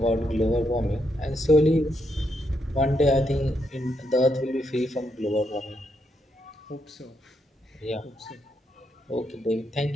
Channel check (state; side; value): normal; both; correlation 0.80